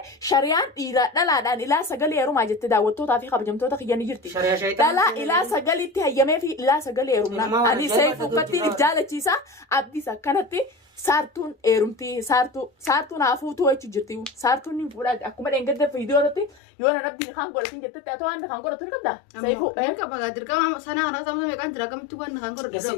shari'aan dhiira dhalaadhaan ilaa sagal eerumaa jette daawwattootaa fi kabajamtoota kiyyanii jirti. Dhalaa ilaa sagalitti hayyamee fi ilaa sagal eerumna. Ani seefu uffatti if jaalachiisa abdiis akkanatti saartuun eerumtii saartuun haafuutuu jechuun jirti. Saartuun ni fuudhaa akkuma dheengadda viidiyoo irratti yoo na dhabdiin kan godhatin jettetti ati waan kan godhatu ni qabda. Seefu Dirqama dirqama sana kana sababa meeqaan jira kamitti waan kan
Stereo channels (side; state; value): right; drops out; at 16.6 s